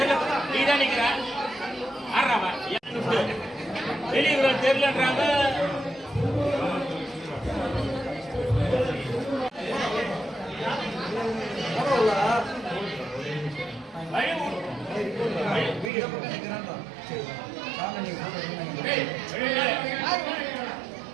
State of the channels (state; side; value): drops out; left; at 15.9 s